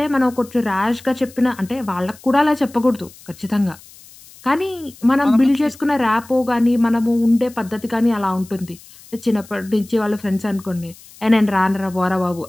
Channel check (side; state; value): left; noise; hiss, 22 dB below the sound